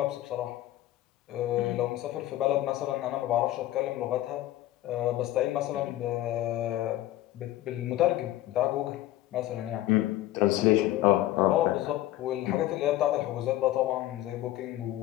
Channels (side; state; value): right; quieter; 14.9 dB